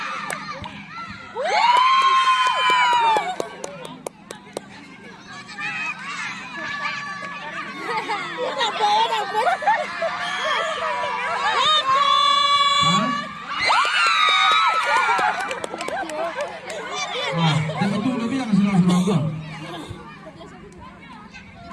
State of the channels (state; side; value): identical; both; correlation 1.00